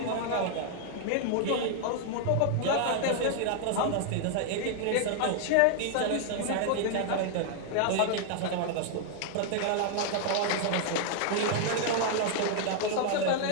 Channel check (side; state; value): both; different; correlation 0.00